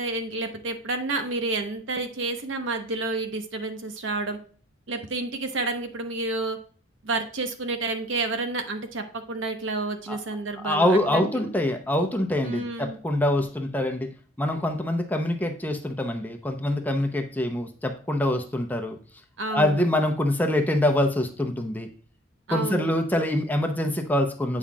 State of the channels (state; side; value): normal; both; correlation 0.56